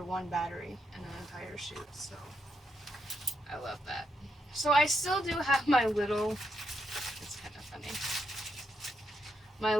one battery in an entire shoot, so I love that. So I still do have my little, it's kind of funny, my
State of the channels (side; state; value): both; normal; correlation 0.81